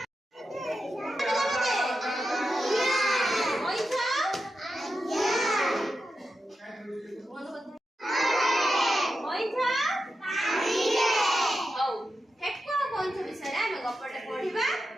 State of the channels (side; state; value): both; normal; correlation 0.89